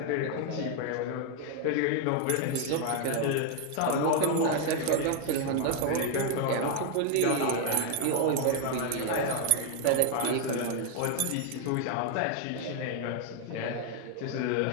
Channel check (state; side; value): different; both; correlation 0.00